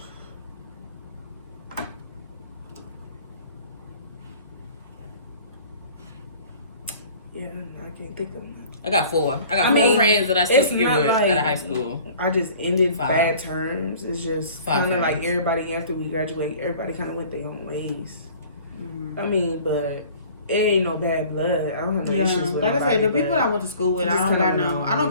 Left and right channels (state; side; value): inverted; both; correlation -0.48